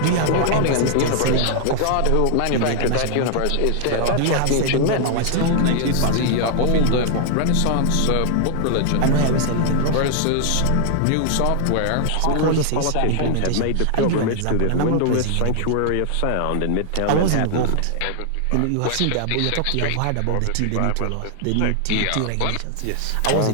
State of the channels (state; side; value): different; both; correlation 0.00